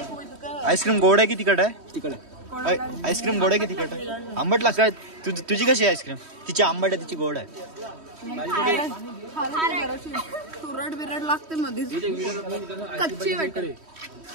आईस्क्रीम गोड आहे की तिखट आहे? तिकडे आईस्क्रीम गोड आहे की तिखट आहे? आंबट लागत काय? तुझी कशी आहे आईस्क्रीम? तिची आंबट आहे, तिची गोड आहे. तुरट बिरट लागते मध्ये कच्ची वाटते.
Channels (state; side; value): late; left; 3.1 ms